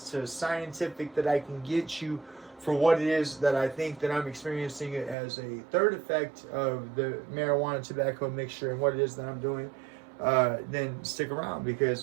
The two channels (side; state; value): left; drops out; at 5.2 s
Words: to scientific that I can get you for what it is that I think that I'm experiencing as a third effect of the marijuana tobacco mixture and what it is that I'm doing, then stick around,